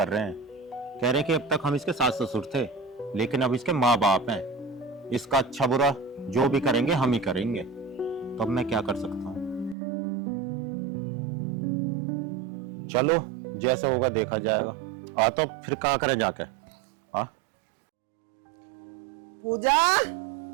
रहे हैं। कह रहे हैं कि अब तक हम इसके सास ससुर थे, लेकिन अब इसके माँ बाप हैं। इसका अच्छा बुरा जो भी करेंगे हम ही करेंगे। तो अब मैं क्या कर सकता हूँ? चलो जैसे होगा देखा जाएगा। आ तो फिर कहाँ करें जाके? हाँ पूजा,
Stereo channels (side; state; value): left; drops out; at 9.8 s